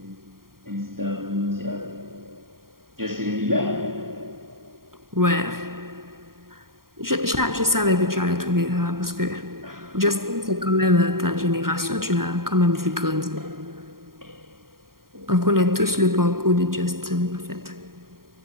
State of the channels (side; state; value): left; late; 0.92 ms